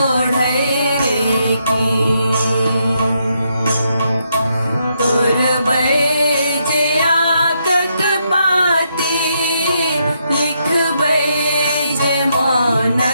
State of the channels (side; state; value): both; inverted; correlation -0.78